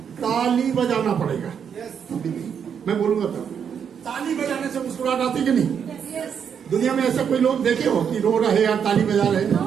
ताली बजाना पड़ेगा। मैं बोलूंगा तब ताली बजाने से मुस्कुराहट आती कि नहीं? दुनिया में ऐसा कोई लोग देखे हो कि रो रहे या ताली बजा रहे?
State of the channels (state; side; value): quieter; left; 7.6 dB